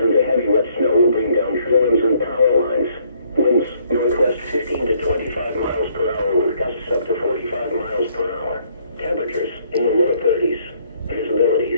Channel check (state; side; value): inverted; both; correlation -0.66